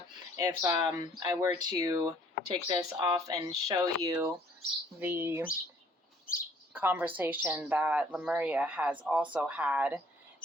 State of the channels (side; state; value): both; normal; correlation 0.59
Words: If I were to take this off and show you the conversation that Lemuria has also had